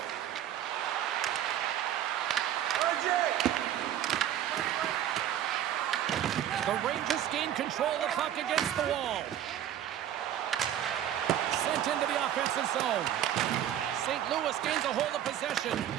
The Rangers gain control of the puck against the wall. Sent into the offensive zone. St. Louis gains a hold of possession.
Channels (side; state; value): left; quieter; 11.0 dB